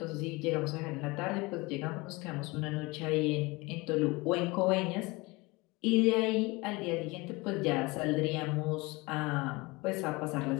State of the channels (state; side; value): quieter; right; 23.6 dB